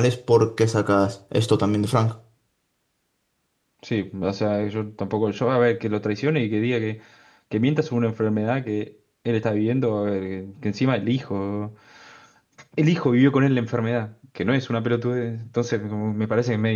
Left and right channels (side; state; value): both; identical; correlation 1.00